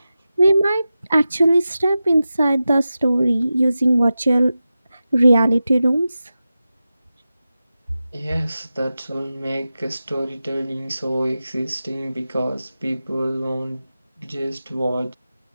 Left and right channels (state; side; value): inverted; both; correlation -0.93